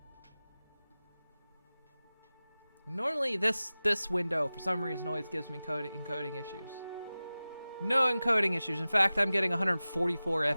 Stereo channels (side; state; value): both; inverted; correlation -0.97